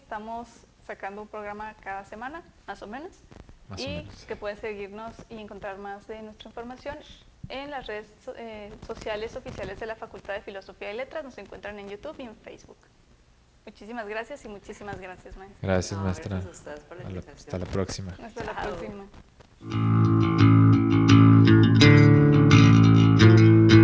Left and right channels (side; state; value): both; identical; correlation 1.00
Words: sacando un programa cada semana, más o menos. Más o Y menos. que pueden seguirnos y encontrar más de nuestra información en las redes sociales oficiales de la Facultad de Filosofía y Letras. Nos encuentran en YouTube y en Facebook. Muchísimas gracias y muchísimas gracias, maestra. Gracias, No, maestra. gracias a ustedes por la invitación. Hasta la próxima. Hasta la Chao. próxima.